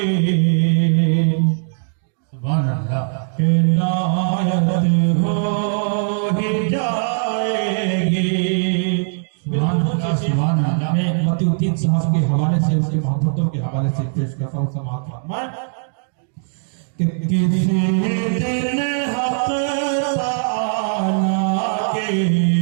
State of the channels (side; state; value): left; silent; digital silence